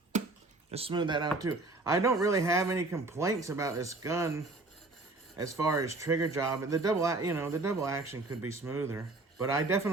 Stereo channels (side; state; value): left; quieter; 3.2 dB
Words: Just smooth that out too. I don't really have any complaints about this gun as far as trigger job. The double action could be smoother, but I